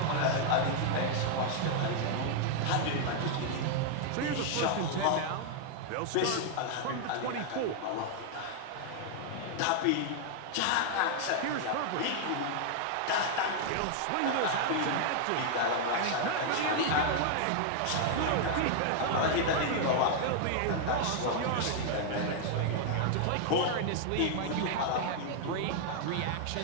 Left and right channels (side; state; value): both; different; correlation 0.00